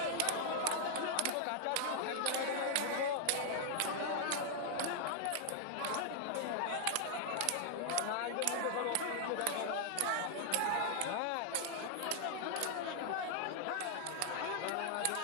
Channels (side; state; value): both; different; correlation 0.00